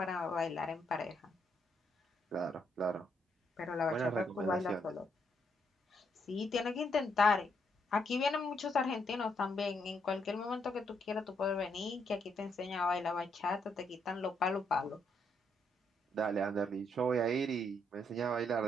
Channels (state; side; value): normal; both; correlation 0.75